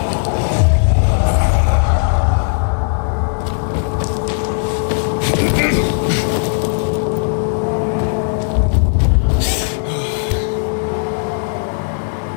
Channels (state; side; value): silent; right; digital silence